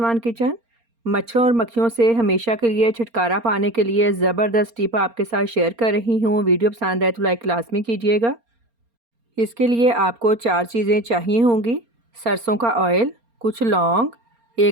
kitchen. मच्छरों और मक्खियों से हमेशा के लिए छुटकारा पाने के लिए ज़बरदस्त टिप आपके साथ शेयर कर रही हूँ। वीडियो पसंद आए तो लाइक लाज़मी कीजिएगा। इसके लिए आपको 4 चीज़ें चाहिए होंगी। सरसों का ऑयल, कुछ लौंग,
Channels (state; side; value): late; left; 4.3 ms